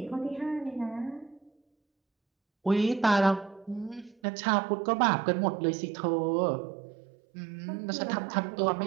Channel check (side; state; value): left; drops out; at 4.2 s